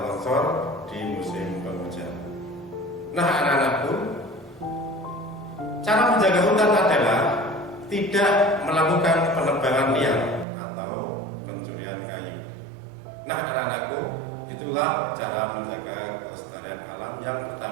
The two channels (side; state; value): left; drops out; at 10.5 s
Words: longsor di musim penghujan. Nah, anak-anakku, cara menjaga hutan adalah tidak melakukan penebangan liar atau pencurian kayu. Nah, anak-anakku, itulah cara menjaga kelestarian alam yang